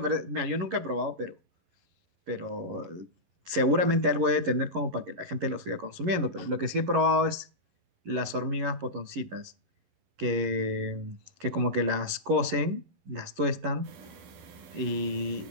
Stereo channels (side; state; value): left; late; 11 ms